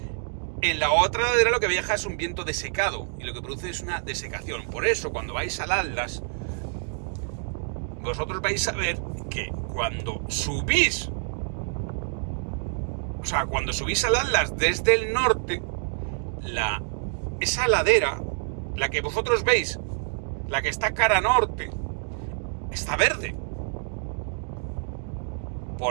en la otra ladera lo que viaja es un viento desecado, y lo que produce es una desecación. Por eso, cuando vais al Atlas, vosotros vais a ver que cuando subís al Atlas desde el norte, esa ladera, la que vosotros veis, la que está cara norte, está verde.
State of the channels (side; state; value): left; silent; 60 dB below the other